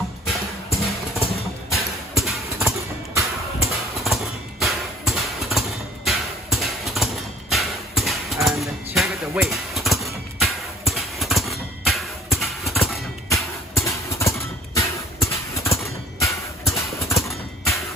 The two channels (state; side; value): normal; both; correlation 0.52